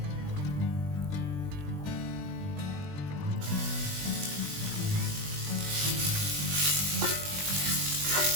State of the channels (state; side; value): late; left; 20 ms